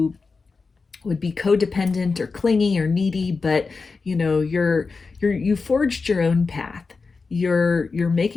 would be codependent or clingy or needy, but you forged your own path. You're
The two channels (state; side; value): quieter; right; 4.4 dB